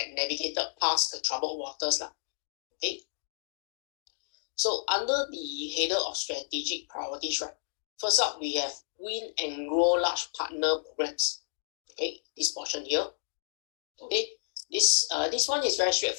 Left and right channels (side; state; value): right; silent; digital silence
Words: navigated past the troubled waters. Okay. So under the header of strategic priorities, right, first up we have win and grow large partner programs. Okay, this portion here. Okay, this one is very